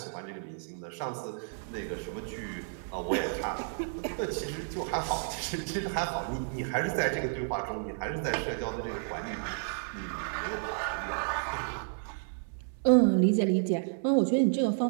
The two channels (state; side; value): silent; left; digital silence